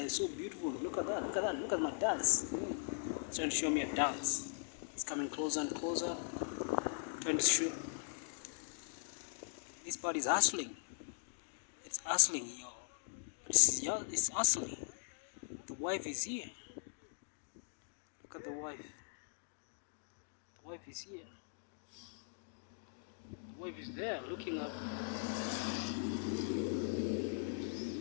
are so beautiful. Look at that, look at that, look at my dance. It's trying to show me a dance. It's coming closer and closer, trying to show. This bird is hustling. It's hustling, y'all. It's hustling. The wife is here. Look at the wife. The wife is here. The wife is there looking up.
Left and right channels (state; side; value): silent; right; digital silence